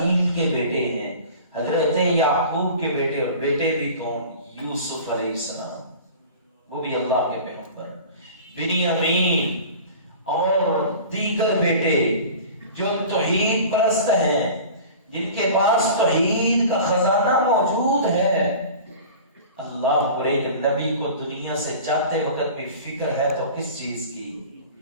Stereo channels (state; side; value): inverted; both; correlation -0.40